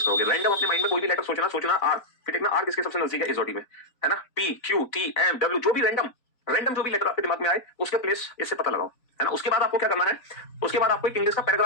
करोगे। रैंडम अपने माइंड में कोई भी लेटर सोचना आर, फिर देखना आर किसके सबसे नजदीक है इस में, है ना। P Q T M W, जो भी रैंडम जो भी लेटर आपके दिमाग में आए उसके प्लेस इससे पता लगाओ, है ना। उसके बाद आपको क्या करना है? उसके बाद आपको एक इंग्लिश का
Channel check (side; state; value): right; late; 4.0 ms